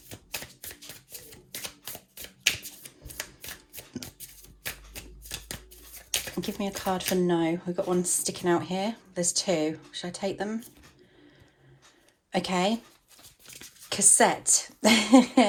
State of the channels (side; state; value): both; identical; correlation 1.00